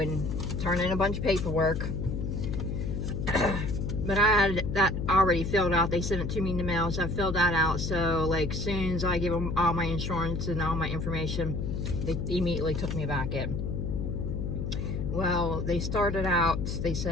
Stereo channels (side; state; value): left; noise; hum, 2 dB below the sound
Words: turn in a bunch of paperwork, but I had that already filled out. They sent it to me in the mail, so I filled that out. So like soon as I give them all my insurance and all my information, they immediately took me back in. Well, they started out, they